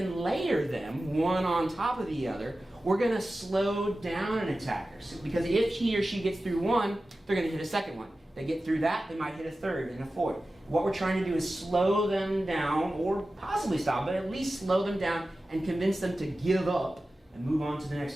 layer them one on top of the other, we're going to slow down an attacker. Because if he or she gets through one, they're going to hit a second one. They get through that, they might hit a third and a fourth. What we're trying to do is slow them down, or possibly stop, but at least slow them down and convince them to give up and move on to the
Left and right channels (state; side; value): normal; both; correlation 0.94